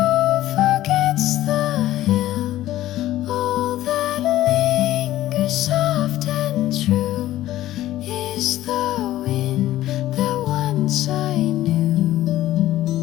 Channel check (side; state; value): right; quieter; 14.5 dB